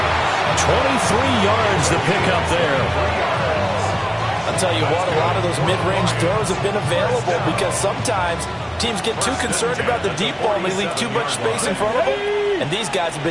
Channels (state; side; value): identical; both; correlation 1.00